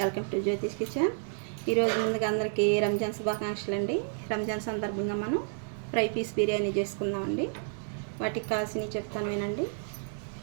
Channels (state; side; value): silent; left; digital silence